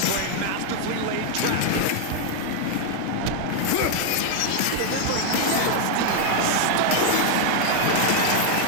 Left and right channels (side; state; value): both; different; correlation 0.00